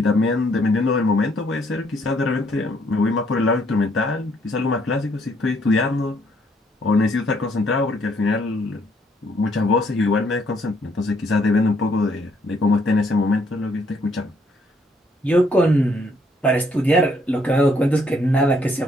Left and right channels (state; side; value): normal; both; correlation 0.68